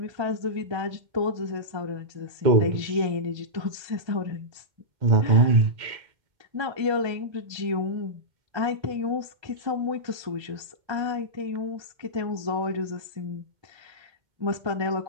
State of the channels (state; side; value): late; left; 1.3 ms